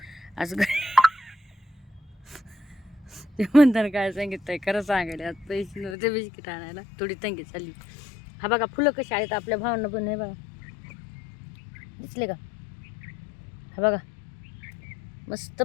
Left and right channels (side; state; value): right; drops out; at 6.0 s